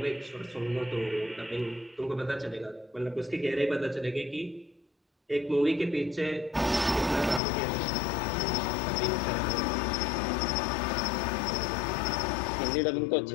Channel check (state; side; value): drops out; right; at 7.4 s